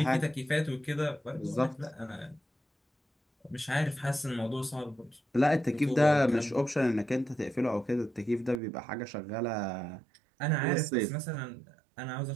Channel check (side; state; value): left; drops out; at 8.6 s